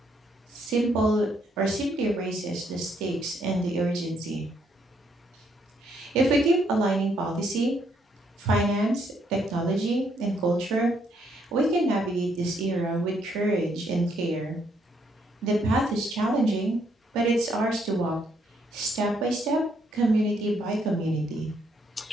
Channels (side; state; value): both; normal; correlation 0.72